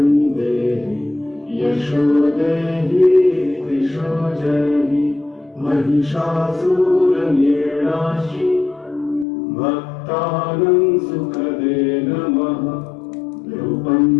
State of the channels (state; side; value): drops out; right; at 9.2 s